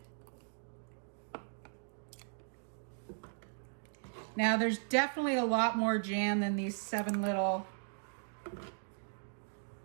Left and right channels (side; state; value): left; silent; digital silence